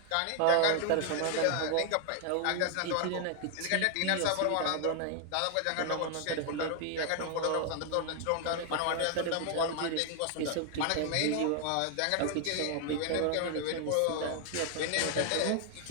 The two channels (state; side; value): different; both; correlation 0.00